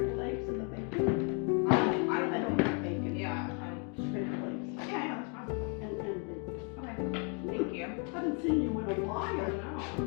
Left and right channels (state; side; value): quieter; right; 38.2 dB